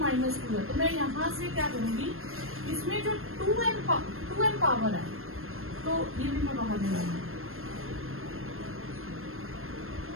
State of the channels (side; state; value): left; late; 0.61 ms